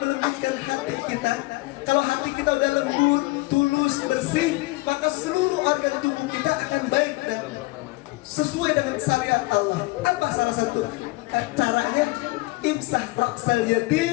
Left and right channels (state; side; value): quieter; right; 22.7 dB